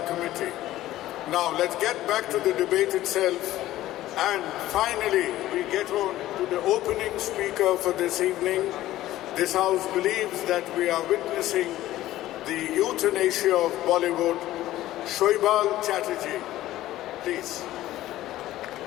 committee. Now let's get back to the debate itself, and finally we get on to the opening speaker for this evening. This house believes that we are witnessing the euthanasia of Bollywood. Shoibal Chatterjee, please.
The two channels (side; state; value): right; quieter; 14.9 dB